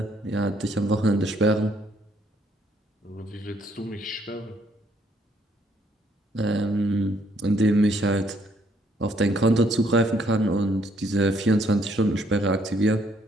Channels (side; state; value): both; normal; correlation 0.68